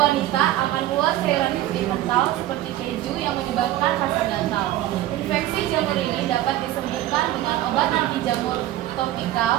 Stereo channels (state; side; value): quieter; left; 14.3 dB